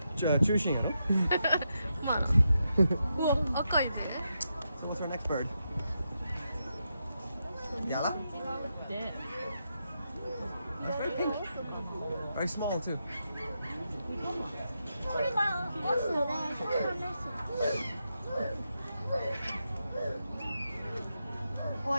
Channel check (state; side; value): inverted; both; correlation -0.85